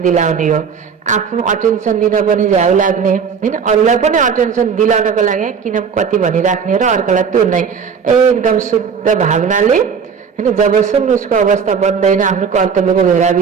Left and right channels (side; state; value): left; quieter; 6.4 dB